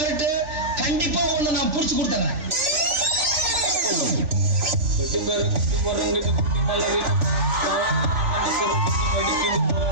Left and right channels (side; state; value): left; late; 3.4 ms